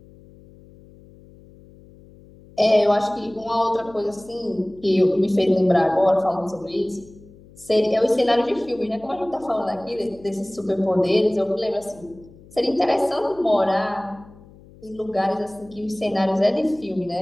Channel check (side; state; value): left; noise; hum, 23 dB below the sound